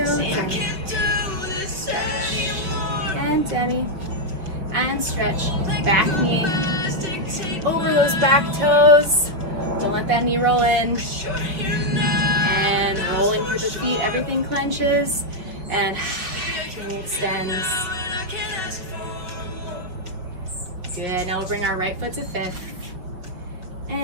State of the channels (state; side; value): late; left; 5.6 ms